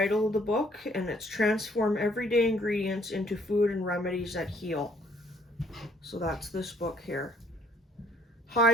of the book, and it's transform everyday ingredients into food and remedies that heal. So that's this book here.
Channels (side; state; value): both; normal; correlation 0.62